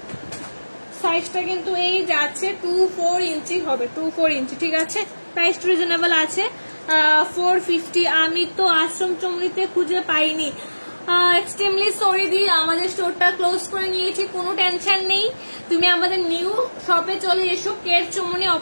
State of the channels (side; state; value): both; inverted; correlation -1.00